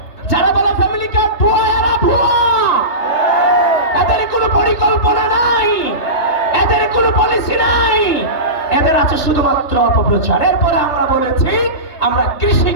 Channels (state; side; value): late; right; 3.3 ms